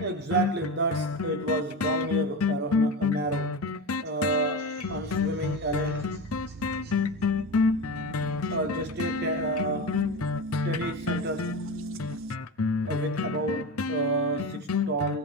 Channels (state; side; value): normal; both; correlation 0.24